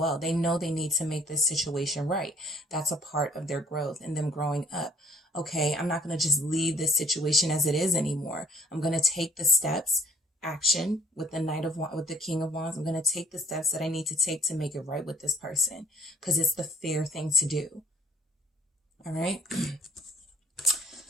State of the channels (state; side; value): normal; both; correlation 0.57